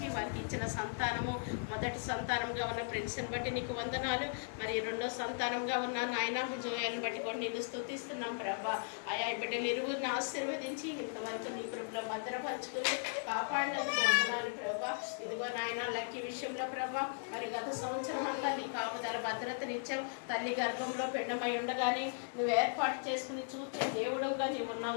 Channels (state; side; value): silent; right; digital silence